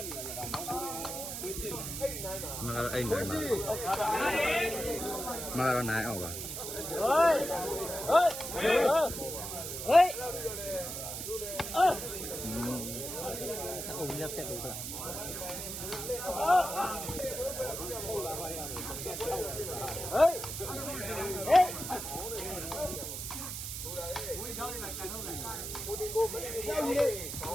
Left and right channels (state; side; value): noise; right; hiss, 6 dB below the sound